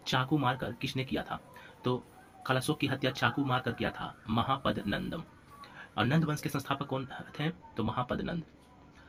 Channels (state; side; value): identical; both; correlation 1.00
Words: चाकू मारकर किसने किया था? तो कालाशोक की हत्या चाकू मारकर किया था महापद नंदम। और नंद वंश के संस्थापक कौन थे? तो महापद नंद।